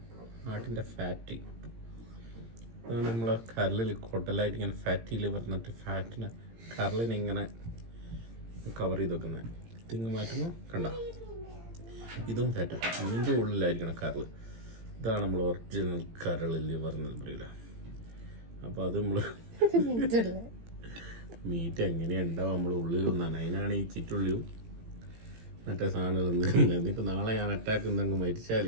ആട്ടിൻ്റെ ഫാറ്റ് ഇതാണ് നമ്മളെ കരളിൽ കൊട്ടലായിട്ട് ഇങ്ങനെ ഫാറ്റിൽ പറഞ്ഞിട്ട് ഫാറ്റിനെ കരളിനെ ഇങ്ങനെ കവർ ചെയ്ത് വെക്കുന്നത്. തിങ്ങ് മാറ്റുമ്പോൾ കണ്ട ഇതും ഫാറ്റാണ്. ഇതിൻ്റെ ഉള്ളിലായിരിക്കണം കരൾ. ഇതാണ് നമ്മൾ ഒറിജിനൽ കരളിൽ പറഞ്ഞത് പറയില്ല. അപ്പോൾ അത് നമ്മൾ മീറ്റ് എങ്ങനെയാണ് ഉണ്ടാവും നമ്മൾ ഉള്ളിലൊന്നാണ്. അതിനാണ് ഈ ചിറ്റുള്ളിയും മറ്റേ സാധനങ്ങൾ നിൽക്കുന്നത്. എന്നിട്ട് നാളെ ഞാൻ അറ്റാക്ക് എന്തെങ്കിലും മരിച്ചാൽ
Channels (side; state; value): left; late; 18 ms